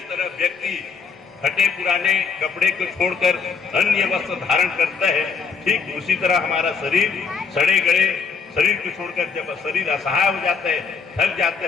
तरह व्यक्ति फटे पुराने कपड़े को छोड़कर अन्य वस्त्र धारण करता है, ठीक उसी तरह हमारा शरीर सड़े गड़े शरीर को छोड़कर जब शरीर असहाय हो जाता है, थक जाता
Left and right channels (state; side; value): quieter; right; 5.4 dB